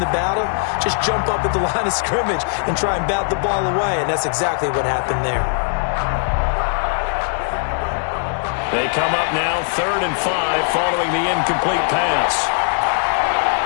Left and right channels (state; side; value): silent; right; 63 dB below the other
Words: battle, just jump up at the line of scrimmage and try and bat the ball away. And that's exactly what happened there. They come up now 3rd and 5 following the incomplete pass.